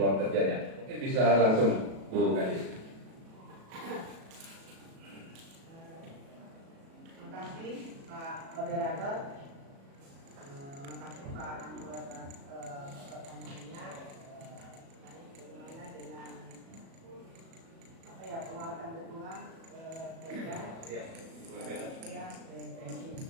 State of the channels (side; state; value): left; late; 36 ms